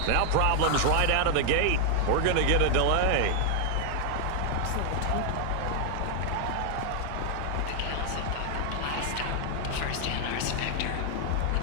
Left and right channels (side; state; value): both; different; correlation 0.00